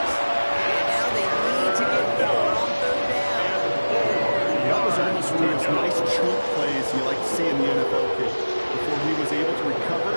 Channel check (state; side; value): inverted; both; correlation -1.00